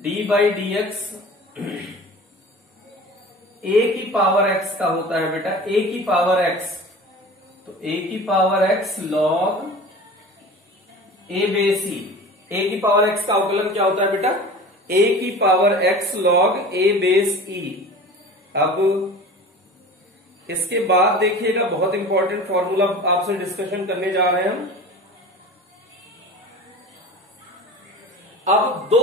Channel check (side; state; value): both; normal; correlation 0.38